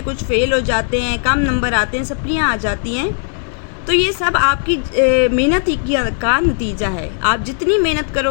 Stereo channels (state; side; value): silent; right; digital silence